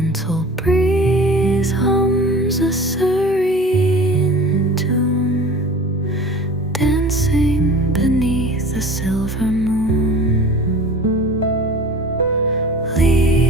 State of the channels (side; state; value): both; normal; correlation 0.40